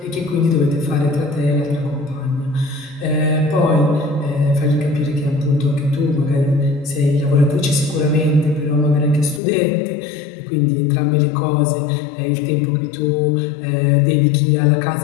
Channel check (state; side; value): drops out; right; at 9.4 s